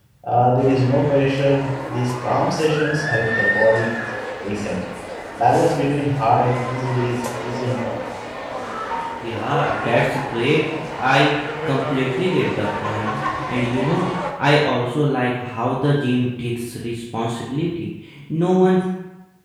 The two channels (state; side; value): identical; both; correlation 1.00